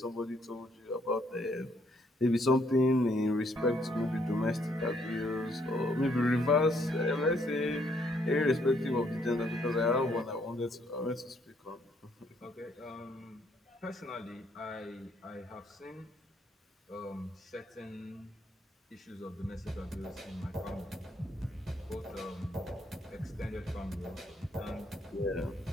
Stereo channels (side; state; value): both; normal; correlation 0.70